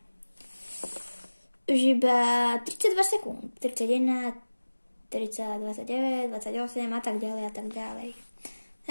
32 sekúnd. 31, 30, 29, 28 a tak ďalej.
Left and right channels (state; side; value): inverted; both; correlation -1.00